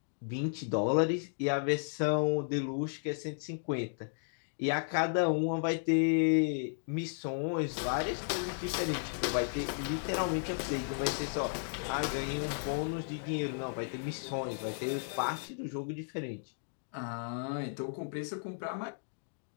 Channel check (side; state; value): right; silent; digital silence